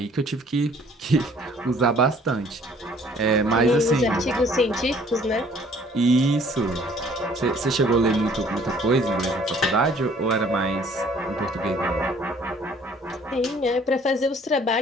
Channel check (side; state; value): both; normal; correlation 0.57